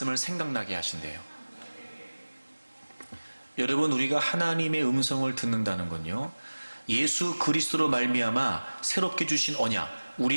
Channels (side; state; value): both; inverted; correlation -1.00